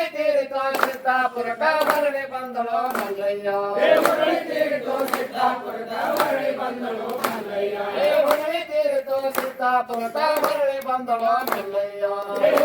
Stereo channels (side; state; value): both; identical; correlation 1.00